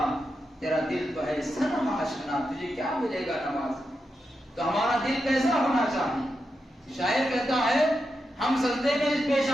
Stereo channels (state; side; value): normal; both; correlation 0.87